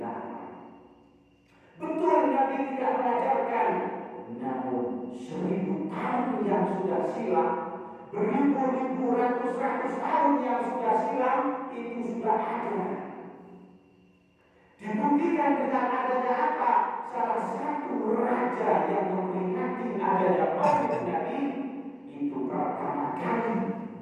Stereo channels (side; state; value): both; identical; correlation 1.00